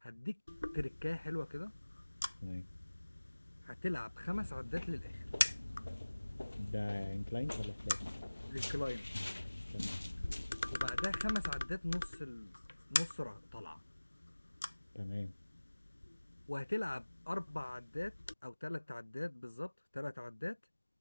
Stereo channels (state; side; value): inverted; both; correlation -1.00